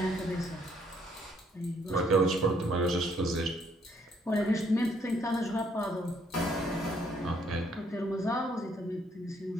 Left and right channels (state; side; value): normal; both; correlation 0.68